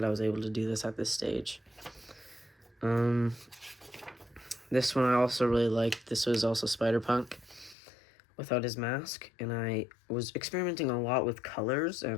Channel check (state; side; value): drops out; right; at 7.8 s